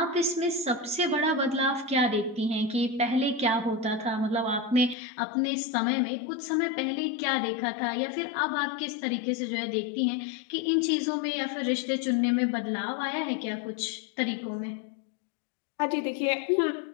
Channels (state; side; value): drops out; right; at 5.0 s